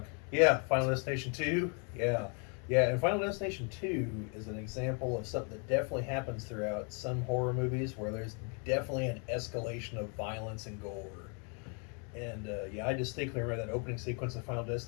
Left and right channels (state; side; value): quieter; right; 37.7 dB